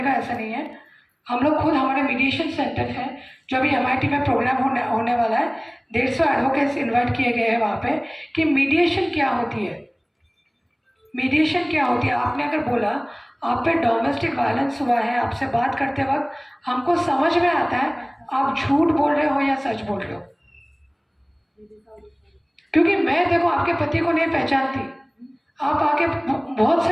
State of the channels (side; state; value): both; identical; correlation 1.00